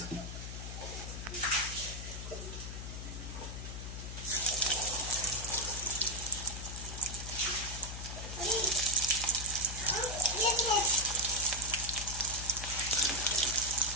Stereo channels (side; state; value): left; noise; hum, 7 dB below the sound